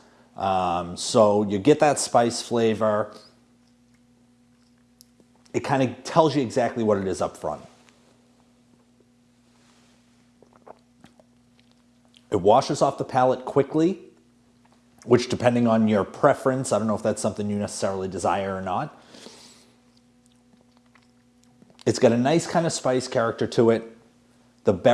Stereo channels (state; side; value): identical; both; correlation 1.00